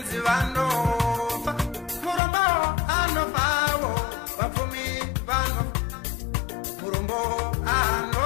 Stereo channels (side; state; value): right; drops out; at 2.2 s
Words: vanofa murombo anofawo vapfumi vanofa murombo